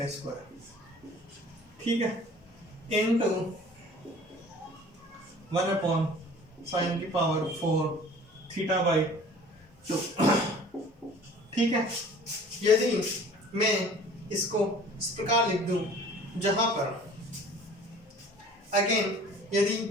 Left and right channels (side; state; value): both; normal; correlation 0.48